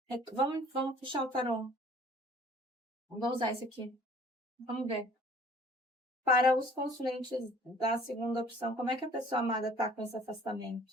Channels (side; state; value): both; normal; correlation 0.53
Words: Vamos fechar o tarô. Vamos usar esse aqui. Vamos ver. Para os consulentes da segunda opção, como é que a pessoa amada está com esse